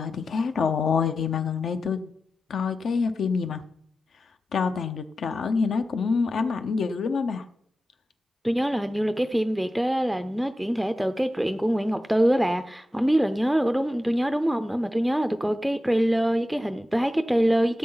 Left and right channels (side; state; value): both; normal; correlation 0.92